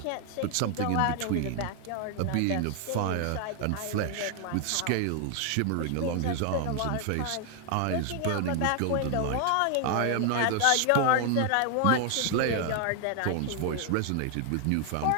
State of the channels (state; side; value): different; both; correlation 0.00